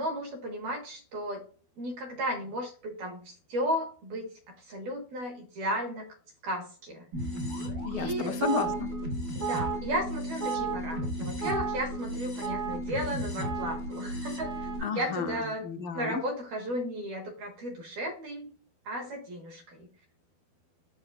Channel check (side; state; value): left; late; 12 ms